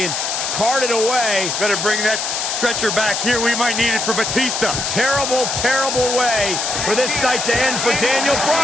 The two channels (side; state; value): left; noise; hiss, 2 dB below the sound